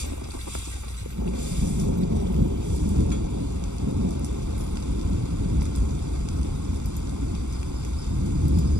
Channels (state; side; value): late; left; 0.84 ms